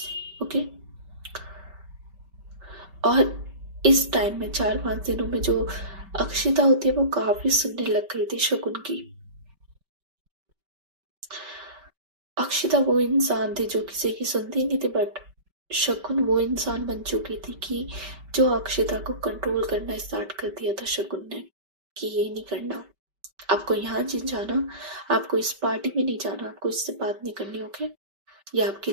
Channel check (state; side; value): late; left; 5.2 ms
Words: ओके। और इस टाइम में 4-5 दिनों में जो अक्षिता होती है वो काफी सुनने लग गई थी शगुन की। अक्षिता वो इंसान थी जो किसी की सुनती नहीं थी, बट शगुन वो इंसान बन चुकी थी कि जो अक्षिता को कंट्रोल करना स्टार्ट कर दिया था शगुन ने, कि ये नहीं करना, आपको यहाँ नहीं जाना, आपको इस पार्टी में नहीं जाना, आपको इससे बात नहीं करनी, ओके, ये आपके